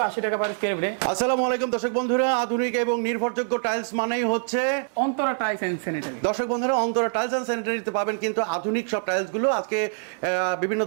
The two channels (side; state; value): left; silent; digital silence